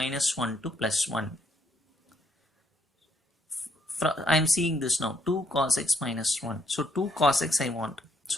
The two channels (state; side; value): normal; both; correlation 0.72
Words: 1 to plus 1. I am seeing this now, 2 cos x minus 1. So 2 cos x I want.